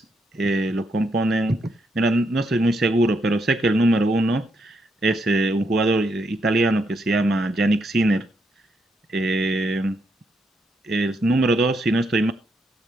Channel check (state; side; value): normal; both; correlation 0.78